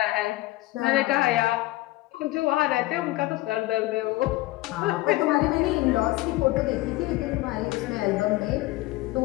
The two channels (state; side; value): quieter; right; 18.7 dB